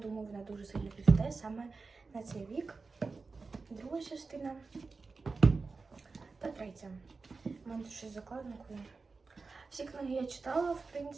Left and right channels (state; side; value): quieter; left; 4.2 dB